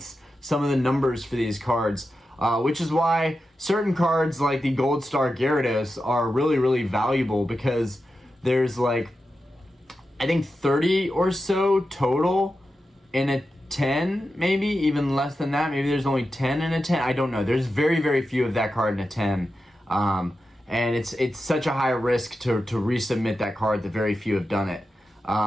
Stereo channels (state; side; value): normal; both; correlation 0.91